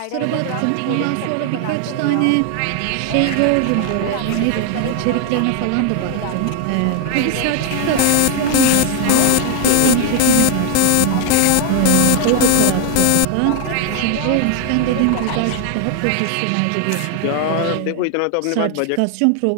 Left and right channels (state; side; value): different; both; correlation 0.00